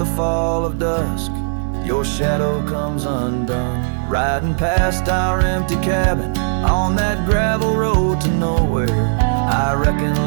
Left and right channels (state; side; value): silent; left; 67 dB below the other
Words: fall of dusk your shadow comes undone. Riding past our empty cabin on that gravel road to nowhere, I reckon